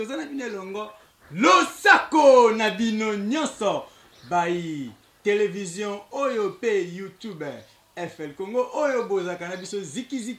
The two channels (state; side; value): identical; both; correlation 1.00